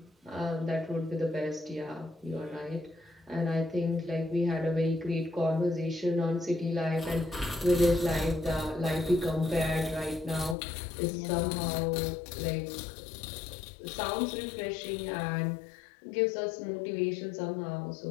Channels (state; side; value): drops out; right; at 10.6 s